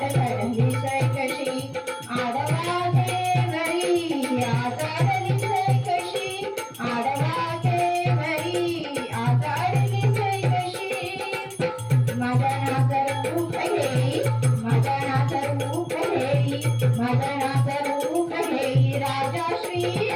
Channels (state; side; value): identical; both; correlation 1.00